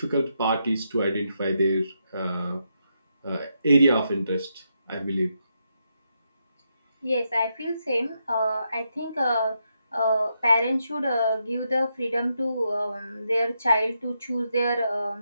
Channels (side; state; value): both; inverted; correlation -0.82